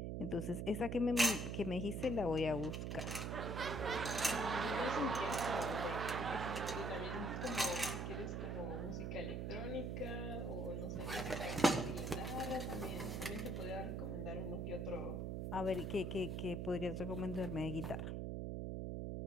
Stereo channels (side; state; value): right; noise; hum, 2 dB below the sound